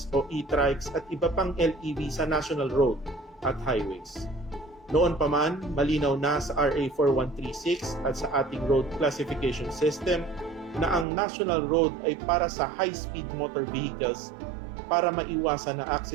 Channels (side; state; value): left; drops out; at 11.1 s